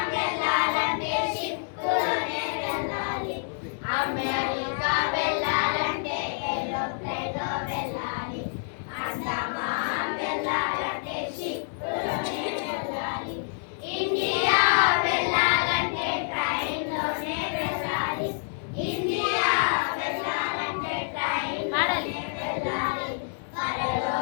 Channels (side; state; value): right; silent; digital silence